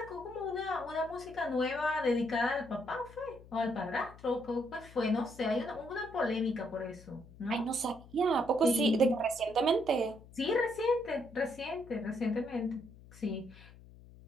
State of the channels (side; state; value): left; noise; hum, 20 dB below the sound